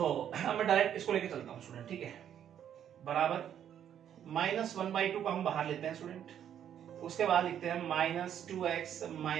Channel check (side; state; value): left; quieter; 9.6 dB